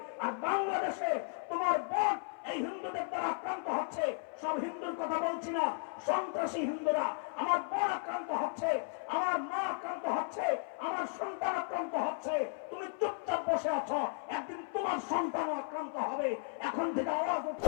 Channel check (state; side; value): silent; right; 54 dB below the other